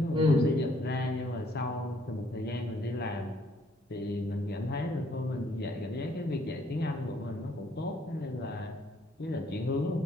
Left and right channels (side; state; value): both; normal; correlation 0.66